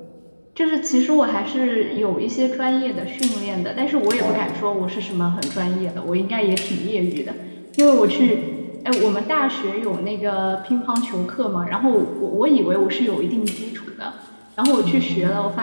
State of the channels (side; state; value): both; inverted; correlation -1.00